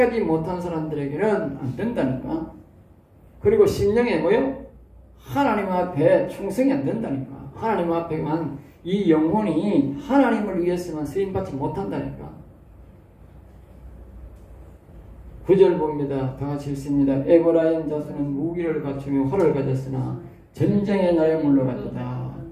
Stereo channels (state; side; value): identical; both; correlation 1.00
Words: 못한 사람들에게는 안 된다니까. 그리고 심령에 뭐요? 하나님 앞에 충성이 안 된다니까. 하나님 앞에만 이 영혼이 하나님을 위해서만 쓰임받지 못한다니까. 9절 봅니다. 다 같이 읽습니다. 에브라임 자손은 무기를 갖추며 활을 가졌으나 전쟁의 날에 물러갔다.